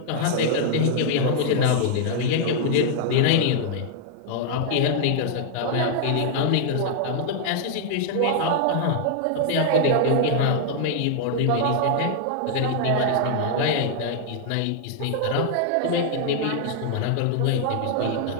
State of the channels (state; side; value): different; both; correlation -0.01